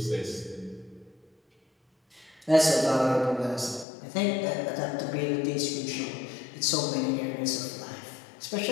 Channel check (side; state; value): right; drops out; at 3.9 s